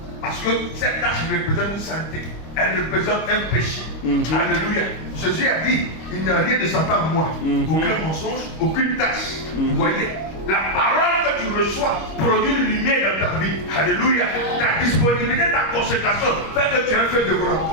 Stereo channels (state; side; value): late; right; 25 ms